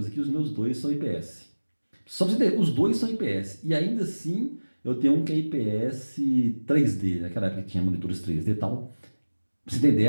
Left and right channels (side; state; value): both; inverted; correlation -1.00